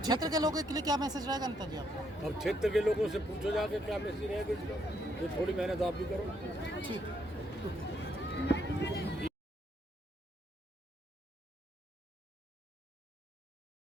क्षेत्र के लोगों के लिए क्या मैसेज रहेगा नेताजी आपका? अब क्षेत्र के लोगों से पूछो जाके क्या मैसेज रहेगा, ये थोड़ी मेहनत आप भी करो। ठीक।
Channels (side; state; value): both; normal; correlation 0.73